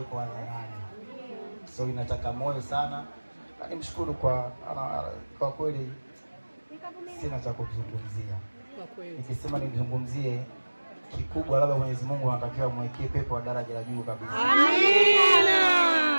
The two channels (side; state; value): both; inverted; correlation -1.00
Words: iko hadharani. So inataka moyo sana. Na nimshukuru kwa kweli sina cha kuzungumzia. Kwa kweli. Nikisema nimzungumzie kikubwa, labda Mwenyezi Mungu anatakiwa mwekee pepo wa daraja la juu kabisa. Amina.